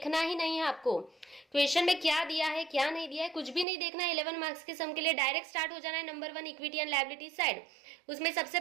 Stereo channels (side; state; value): left; drops out; at 3.7 s